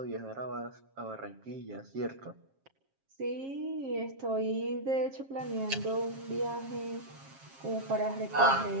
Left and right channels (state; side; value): late; left; 7.4 ms